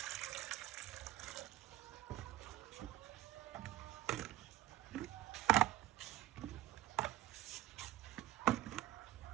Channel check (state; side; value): quieter; left; 15.1 dB